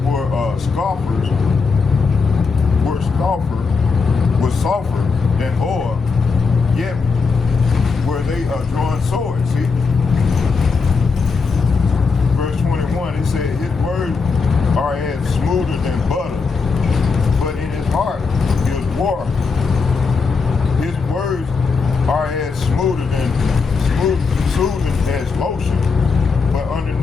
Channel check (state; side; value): quieter; right; 4.8 dB